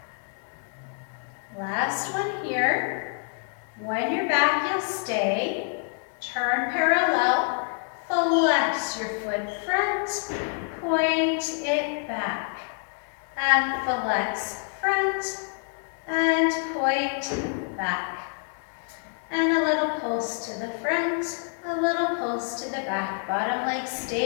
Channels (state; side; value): silent; right; 55 dB below the other